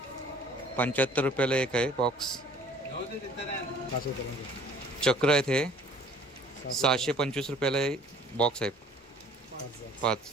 75 रुपयाला एक आहे बॉक्स. चक्र आहेत हे 625 रुपयाला बॉक्स आहे 5.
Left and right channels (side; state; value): both; normal; correlation 0.53